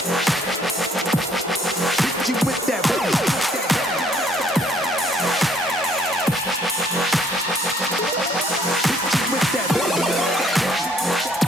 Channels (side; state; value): both; normal; correlation 0.63